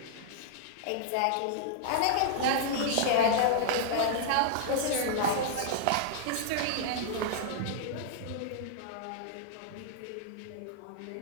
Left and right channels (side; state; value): both; different; correlation -0.01